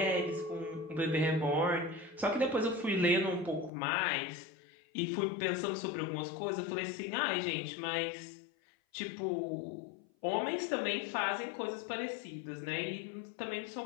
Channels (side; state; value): right; drops out; at 3.7 s